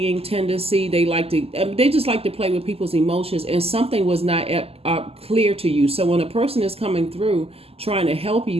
tendency. They just like to play with people's emotions, and something was not clear to you. So when a person is coming through trying to help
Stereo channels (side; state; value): left; late; 0.29 ms